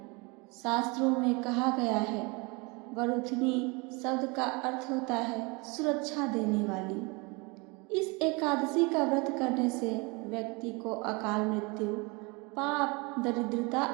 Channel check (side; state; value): left; quieter; 28.0 dB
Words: शास्त्रों में कहा गया है, वरुथनी शब्द का अर्थ होता है सुरक्षा देने वाली। इस एकादशी का व्रत करने से व्यक्ति को अकाल मृत्यु, पाप, दरिद्रता